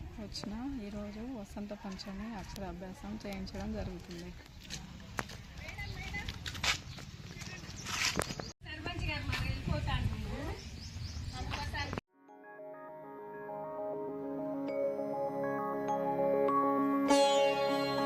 వచ్చిన ఈరోజు వసంత పంచమి అక్షరాభ్యాసం చేయించడం జరుగుతుంది.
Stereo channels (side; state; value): both; identical; correlation 1.00